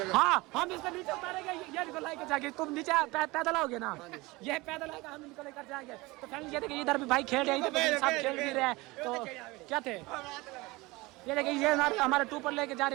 हाँ हम इसको नीचे उतारेंगे, ये निकल लेकर जाएंगे। तुम नीचे पैदल आओगे ना, ये पैदल आएगा, हम इनको लेकर जाएंगे। तो फैमिली ये देखिए इधर भी भाई खेल रहे हैं, इधर सब खेल भी रहे हैं। तो क्या थे ये देखिए ये हमारे टू पर लेके जा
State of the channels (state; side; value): quieter; left; 22.3 dB